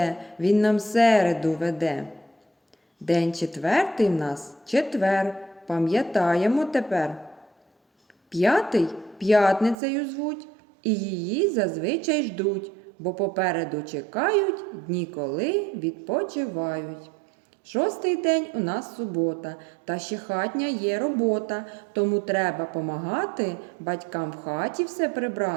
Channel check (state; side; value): drops out; left; at 9.8 s